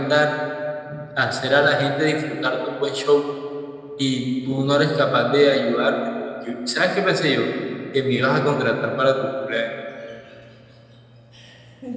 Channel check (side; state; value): both; identical; correlation 1.00